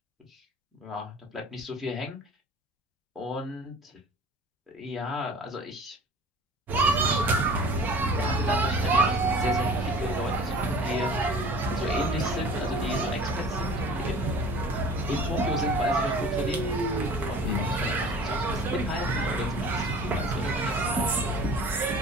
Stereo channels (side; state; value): both; normal; correlation 0.44